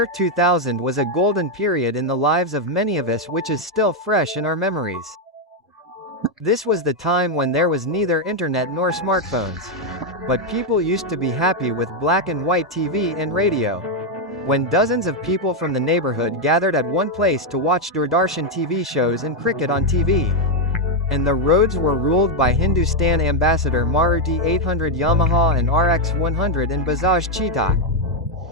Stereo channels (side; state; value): both; normal; correlation 0.02